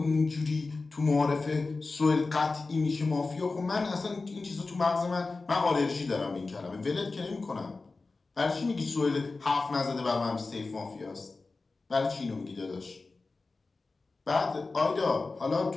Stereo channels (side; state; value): right; quieter; 3.7 dB